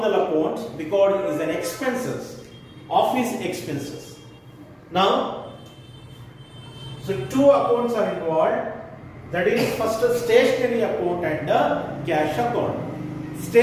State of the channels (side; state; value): both; identical; correlation 1.00